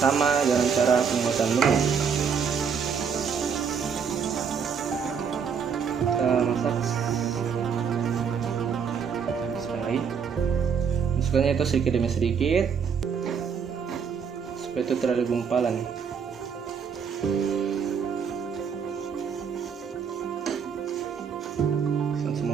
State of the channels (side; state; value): left; quieter; 6.6 dB